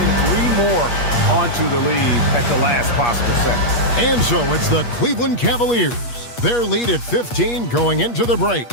3 more onto the lead at the last possible second. And so it's the Cleveland Cavaliers. Their lead at 15 going into the break.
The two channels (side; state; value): right; late; 8.4 ms